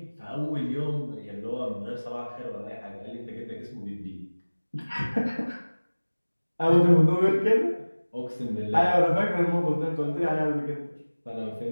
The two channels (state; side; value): inverted; both; correlation -1.00